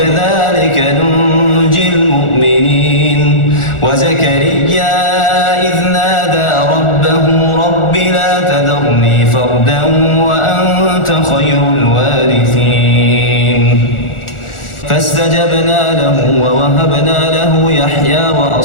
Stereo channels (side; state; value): right; late; 1.4 ms